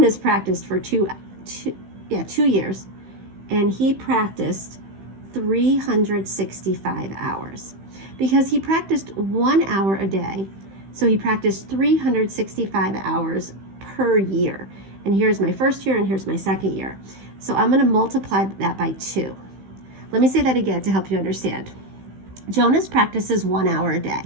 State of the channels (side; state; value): left; late; 15 ms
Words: practiced for 2 years, and he practiced 365 hours because he practiced 1 hour a day. So he practiced 365 hours per year. And here's my first year, and here's my second year. So I'm going to multiply that by 2. Let me say that again to help you understand. Jonas practices 1 hour a day